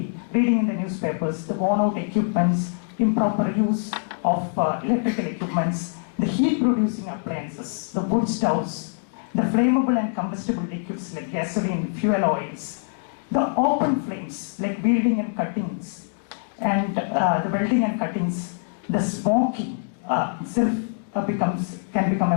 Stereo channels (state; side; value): silent; right; digital silence